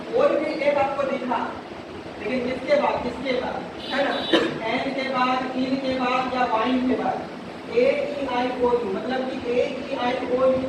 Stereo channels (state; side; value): identical; both; correlation 1.00